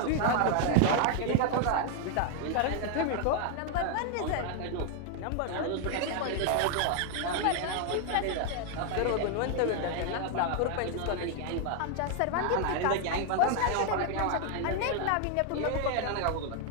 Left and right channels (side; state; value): both; different; correlation 0.00